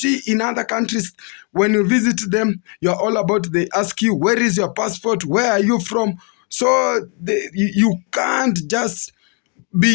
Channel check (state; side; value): quieter; right; 37.0 dB